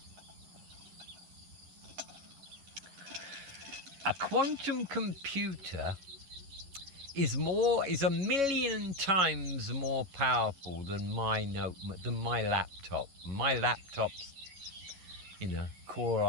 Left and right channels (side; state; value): left; late; 11 ms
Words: A quantum computer is a million times more powerful than my laptop. My laptop's, Core